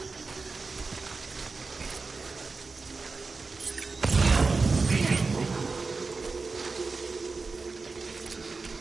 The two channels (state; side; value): quieter; left; 4.2 dB